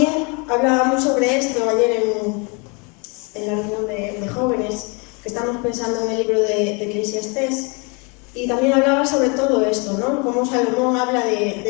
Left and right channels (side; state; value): right; quieter; 31.8 dB